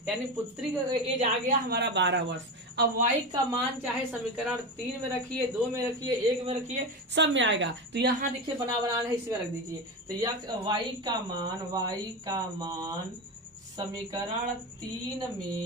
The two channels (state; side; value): normal; both; correlation 0.20